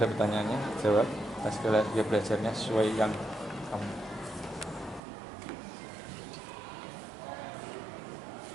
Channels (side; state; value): left; drops out; at 5.0 s